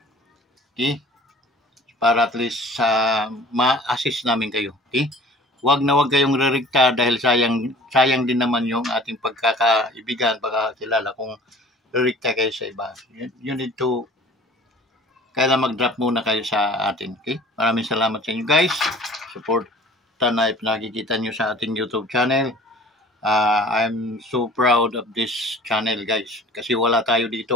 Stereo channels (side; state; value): both; normal; correlation 0.46